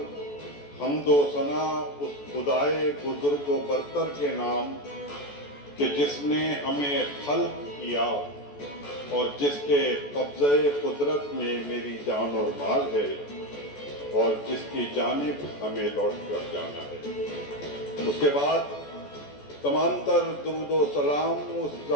حمد و ثنا اس خدائے بزرگ و برتر کے نام کہ جس نے ہمیں خلق کیا اور جس کے قبضہ قدرت میں میری جان اور مال ہے اور جس کی جانب ہمیں لوٹ کر جانا ہے۔ اس کے بعد تمام تر درود و سلام اس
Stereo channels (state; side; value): late; right; 14 ms